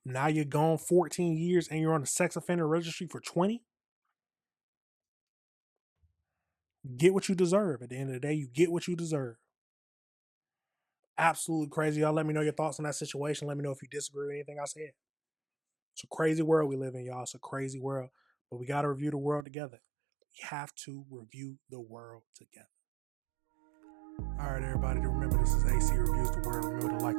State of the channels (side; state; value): left; drops out; at 19.5 s